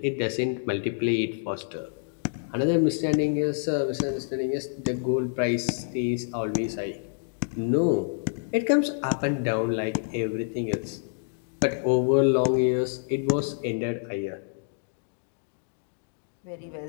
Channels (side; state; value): right; silent; digital silence